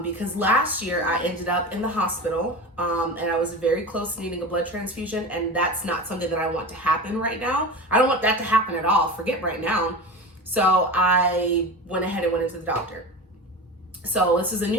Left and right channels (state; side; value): normal; both; correlation 0.29